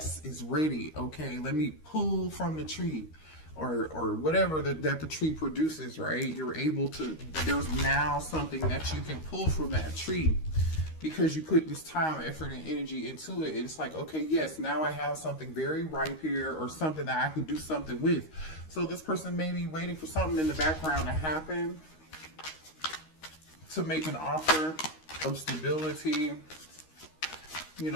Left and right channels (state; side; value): late; right; 13 ms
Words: it's ready. Okay, let me pull from the tree or whatever that the tree produces, right? You're able to, there's now something that you can pull from that tree. Because you put this time, effort, and energy into it, it's like, okay, yes, now I have something very ripe here, or something that I could do something with. So this person may be waiting for something in the background to happen, to make an offer of stability, you